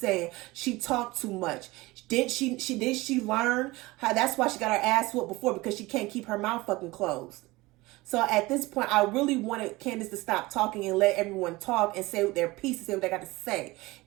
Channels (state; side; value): quieter; left; 21.0 dB